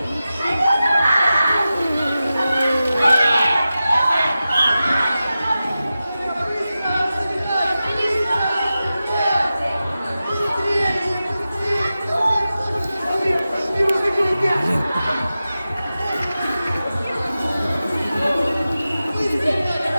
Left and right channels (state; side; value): inverted; both; correlation -0.93